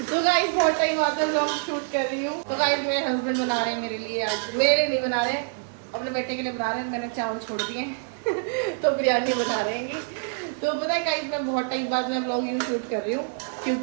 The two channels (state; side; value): silent; left; 61 dB below the other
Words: तो गाइस बहुत टाइम बाद में ब्लॉग शूट कर रही हूँ। तो गाइस मेरे हस्बैंड बना रहे हैं मेरे लिए, आज मेरे लिए नहीं बना रहे, अपने बेटे के लिए बना रहे हैं। मैंने चावल छोड़ दिए तो बिरयानी बना रहे हैं। तो पता है गाइस, मैं बहुत टाइम बाद में ब्लॉगिंग शूट कर रही हूँ